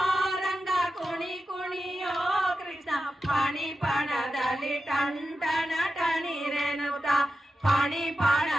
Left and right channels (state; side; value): normal; both; correlation 0.91